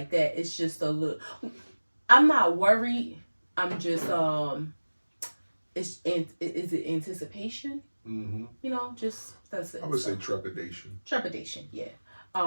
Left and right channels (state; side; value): inverted; both; correlation -1.00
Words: that. It's just a little. I'm not worried. I'm just is it anticipation? Mm-hmm. Just that's it. I would say trepidation. Trepidation, yeah.